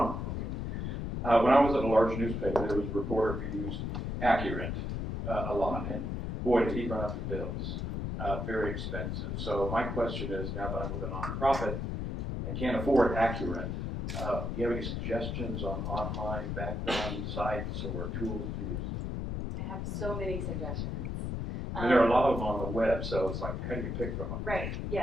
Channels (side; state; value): left; noise; rumble, 3 dB below the sound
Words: Okay. When I was at a large newspaper, there was a reporter who used Accurate a lot, and boy, did he run up the bills. Very expensive. So my question is, now that I'm with a nonprofit and can't afford Accurate, do you have any suggestions on online background sites or tools to use? I have so many suggestions. I mean, there are a lot of them on the web, so it's like, how do you pick from them? Right,